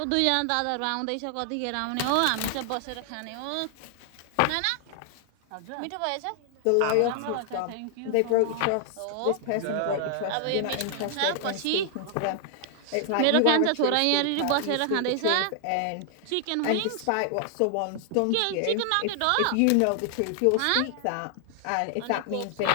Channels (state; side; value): different; both; correlation 0.00